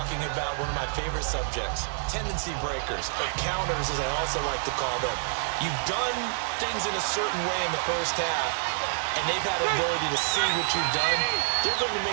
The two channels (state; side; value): silent; left; 60 dB below the other